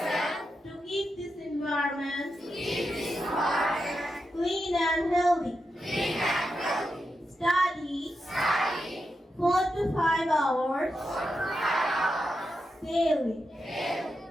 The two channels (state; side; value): normal; both; correlation 0.87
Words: to keep this environment clean and healthy. Study 4 to 5 hours daily.